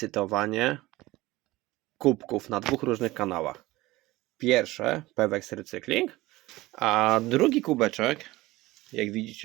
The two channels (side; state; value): left; quieter; 19.0 dB